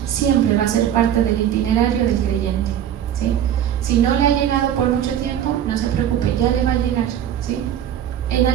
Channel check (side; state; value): left; quieter; 10.2 dB